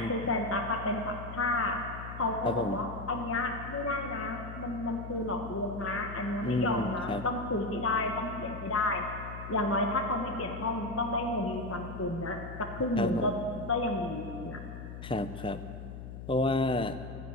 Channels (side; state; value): left; noise; hum, 10 dB below the sound